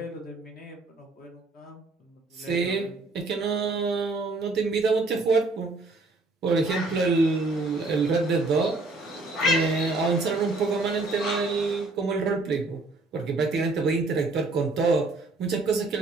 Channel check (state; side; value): quieter; left; 3.2 dB